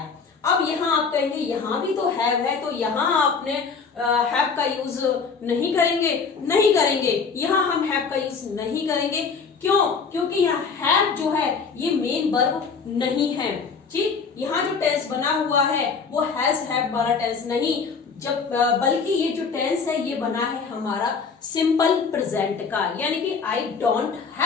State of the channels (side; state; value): right; quieter; 5.3 dB